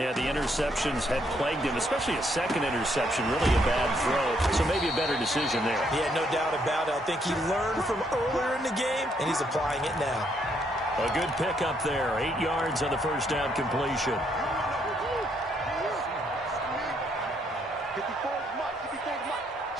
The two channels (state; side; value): normal; both; correlation 0.72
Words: the interceptions had plagued him, especially a second interception. Really a bad throw. So maybe a better decision there. Yeah, no doubt about it. I think he learned from earlier in the game, and he's applying it now. A good pickup there. 8 yards on the first down completion.